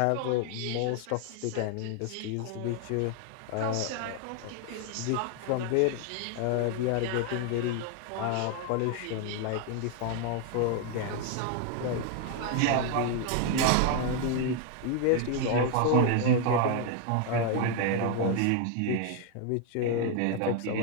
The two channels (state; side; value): different; both; correlation 0.01